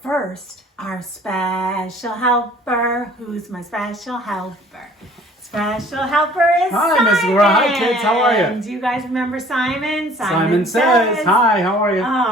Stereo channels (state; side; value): normal; both; correlation 0.52